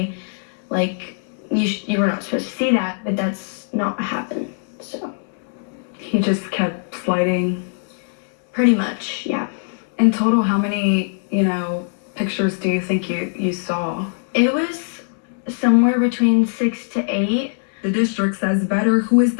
Like, you were not supposed to see that, but that's not what happened. So He just kept sliding. pretty much, yeah. In total, how many, pictures do you think you saw? It was somewhere between 6 to 8. The district says Vetter, who is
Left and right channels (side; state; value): right; silent; 65 dB below the other